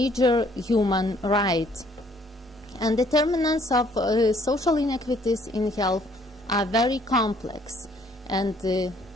human right. And determinants of social inequities in health are very complex, and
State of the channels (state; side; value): normal; both; correlation 0.63